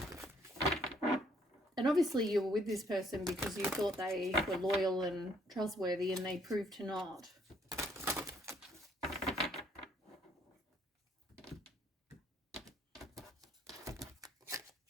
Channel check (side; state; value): both; normal; correlation 0.66